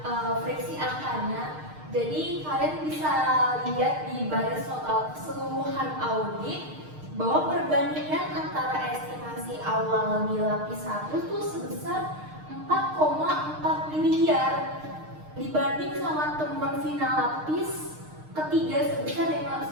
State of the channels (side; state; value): left; late; 6.5 ms